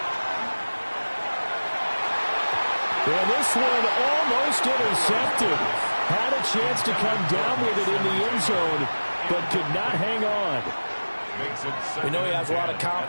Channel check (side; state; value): both; inverted; correlation -1.00